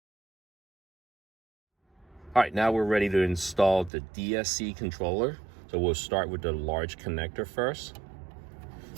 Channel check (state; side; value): drops out; left; at 3.9 s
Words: All right, now we're ready to install the DSC controller. So we'll start with the large connector first.